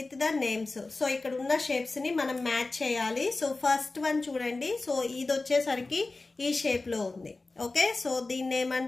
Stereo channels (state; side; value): quieter; right; 3.4 dB